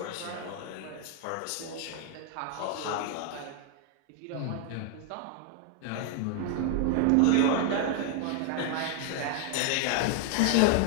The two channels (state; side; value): different; both; correlation 0.00